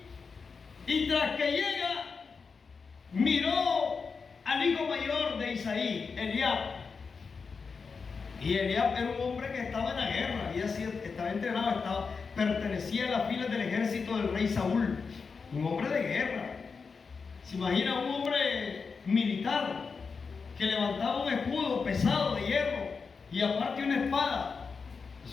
y tras que llega, miró al hijo mayor de Isaí, Eliab. Y Eliab era un hombre que estaba en la guerra, estaba entrenado, pertenecía a las filas del ejército del rey Saúl, un hombre de guerra. Se imagina un hombre militar que levantaba un escudo pesado de hierro y aparte una espada.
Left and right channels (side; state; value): right; quieter; 5.1 dB